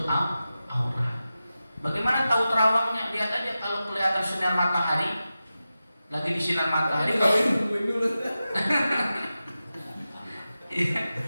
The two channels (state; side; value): inverted; both; correlation -0.93